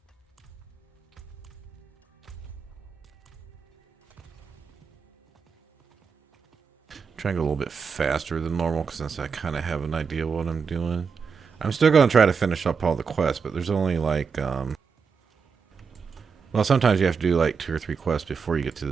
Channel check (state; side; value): quieter; left; 5.7 dB